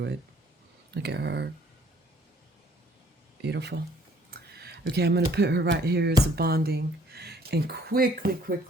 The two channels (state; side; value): normal; both; correlation 0.59